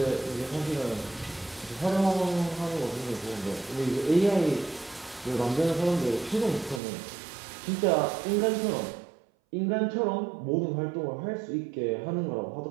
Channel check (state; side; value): drops out; left; at 6.8 s